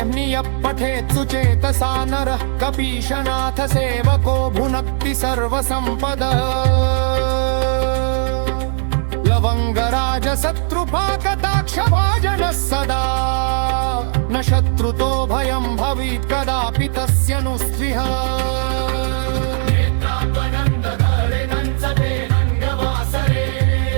पठेत् सुचेतसा नरः कपीशनाथ सेवको भुनक्ति सर्वसम्पदः लवङ्गराजशत्रुपाकटाक्षभाजनः सदा न शत्रुतो भयं भवेत् कदापि तस्य नु स्विह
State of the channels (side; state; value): left; silent; digital silence